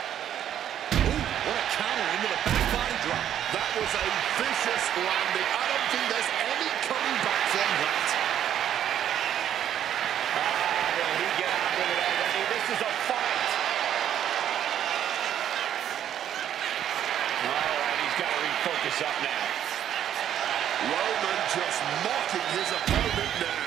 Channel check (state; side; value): quieter; left; 10.3 dB